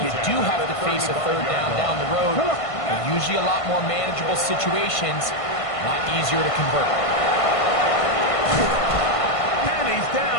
you do have to face a 3rd down the road, they're usually a lot more manageable situations, a lot easier to convert. And he's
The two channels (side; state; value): right; late; 1.5 ms